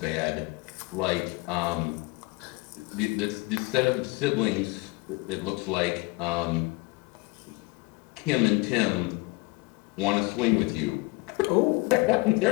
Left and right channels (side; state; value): right; quieter; 24.5 dB